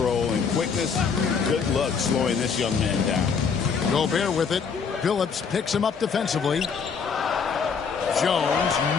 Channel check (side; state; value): right; quieter; 6.0 dB